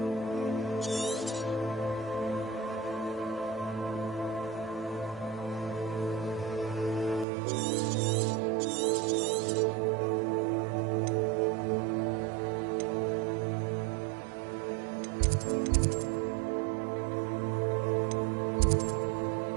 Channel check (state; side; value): drops out; left; at 7.2 s